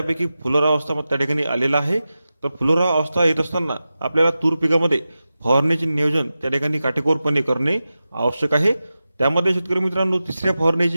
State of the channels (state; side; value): inverted; both; correlation -0.93